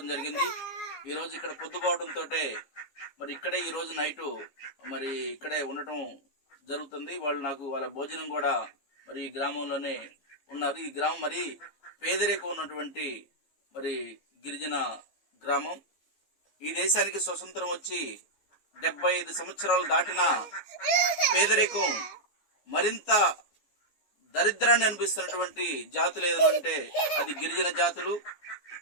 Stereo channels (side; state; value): right; late; 15 ms